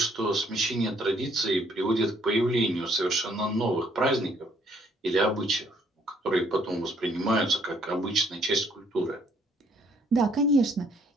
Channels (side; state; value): both; normal; correlation 0.65